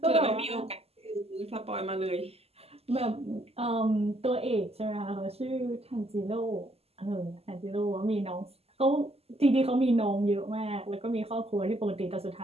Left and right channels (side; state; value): left; late; 0.29 ms